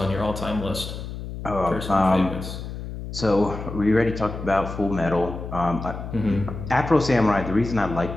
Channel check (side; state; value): left; noise; hum, 8 dB below the sound